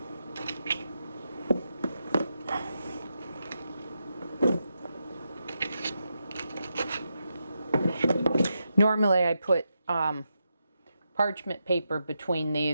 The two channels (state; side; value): inverted; both; correlation -0.85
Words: Normally I put parchment paper between